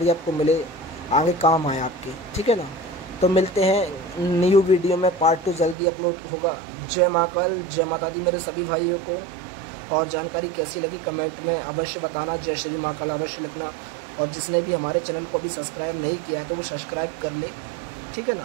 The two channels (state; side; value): drops out; left; at 5.8 s